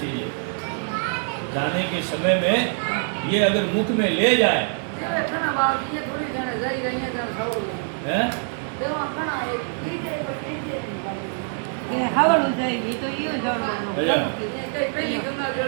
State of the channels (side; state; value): left; silent; 58 dB below the other